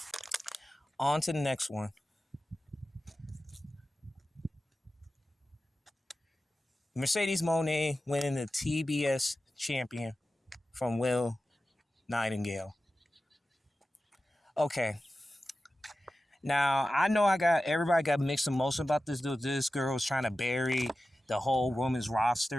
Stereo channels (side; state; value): both; normal; correlation 0.94